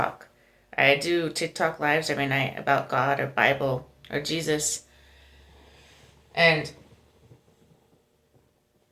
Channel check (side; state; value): both; identical; correlation 1.00